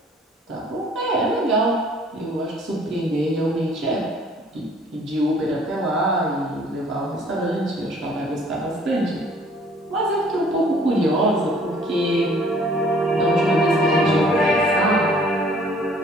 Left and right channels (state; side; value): normal; both; correlation 0.56